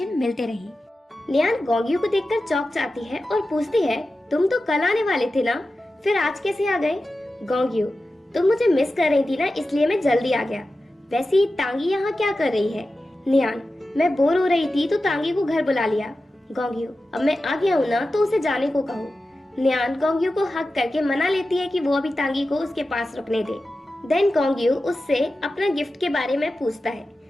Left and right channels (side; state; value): both; normal; correlation 0.93